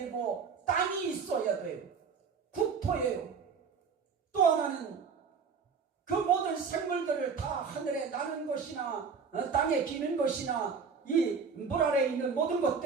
땅이 있어야 돼요. 국토예요. 또 하나는 그 모든 생물들을 다 하늘에 나는 것이나 땅에 기는 것이나 이 물 아래에 있는 모든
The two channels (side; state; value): left; quieter; 5.7 dB